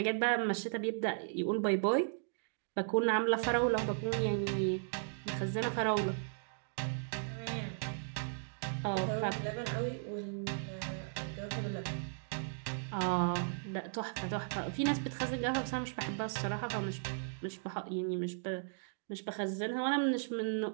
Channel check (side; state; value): left; silent; digital silence